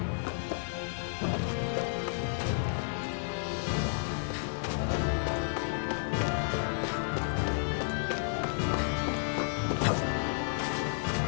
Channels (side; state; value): right; silent; digital silence